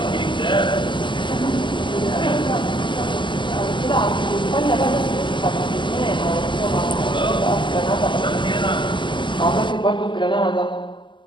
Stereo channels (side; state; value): right; late; 0.23 ms